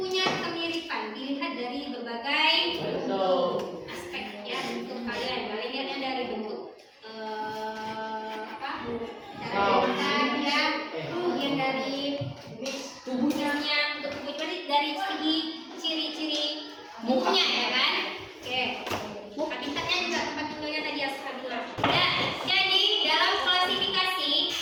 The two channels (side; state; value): both; identical; correlation 1.00